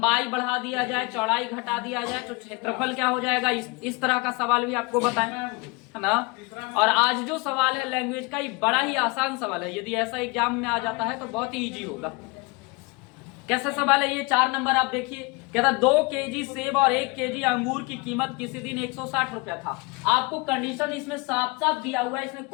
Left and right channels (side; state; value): right; quieter; 27.7 dB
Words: बढ़ा दिया जाए, चौड़ाई घटा दिया जाए तो क्षेत्रफल क्या हो जाएगा, इस तरह का सवाल भी आपको बताएं, है ना। और आज जो सवाल है लैंग्वेज का, ये बड़ा ही आसान सवाल है। यदि ऐसा एग्जाम में आ जाता है तो बहुत ही इजी होगा। कैसा सवाल है ये? 4 नंबर आप देखिए, कहता 2 केजी सेब और 1 केजी अंगूर की कीमत किसी दिन 160 रुपया था। आपको कंडीशन इसमें साफ साफ दिया हुआ है, इसमें